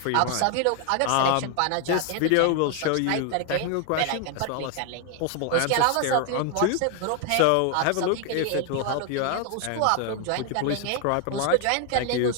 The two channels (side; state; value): both; different; correlation 0.00